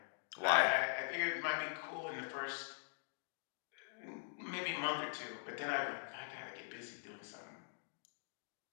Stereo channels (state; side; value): silent; right; digital silence